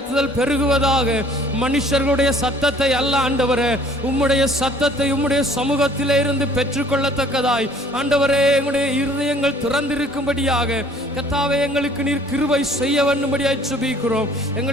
பெருகுவதாக. மனுஷர்களுடைய சத்தத்தை அல்ல ஆண்டவரே, உம்முடைய சத்தத்தை உம்முடைய சமூகத்திலே இருந்து பெற்றுக்கொள்ளத்தக்கதாய் ஆண்டவரே எங்களுடைய இருதயங்கள் திறந்திருக்கும்படியாக கர்த்தாவே எங்களுக்கு நீர் கிருபை செய்ய வேண்டும்படியாய் ஜெபிக்கிறோம்.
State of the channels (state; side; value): normal; both; correlation 0.55